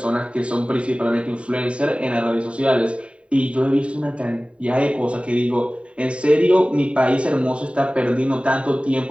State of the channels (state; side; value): late; left; 0.061 ms